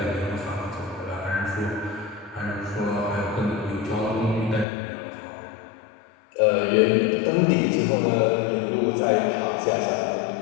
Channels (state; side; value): drops out; right; at 4.7 s